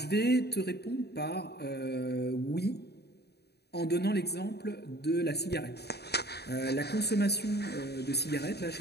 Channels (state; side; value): late; right; 0.48 ms